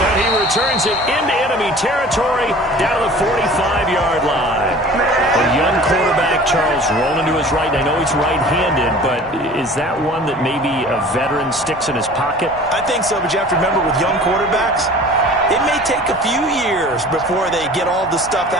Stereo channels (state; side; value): noise; right; hum, 25 dB below the sound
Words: he returns it into enemy territory down to the 45-yard line. A young quarterback, Charles, rolling to his right. I know he's right-handed, but is that one that maybe a veteran sticks in his pocket? I think so, but you have to remember with young quarterbacks, it may take a few years before they get all the stuff